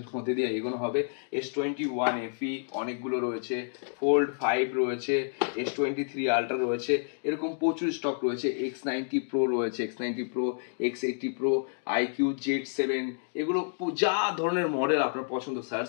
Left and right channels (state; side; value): silent; right; digital silence